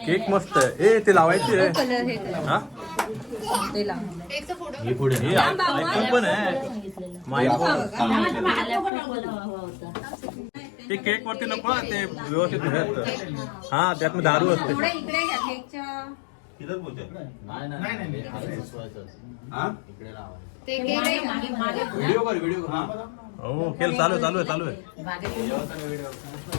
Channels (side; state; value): right; drops out; at 8.9 s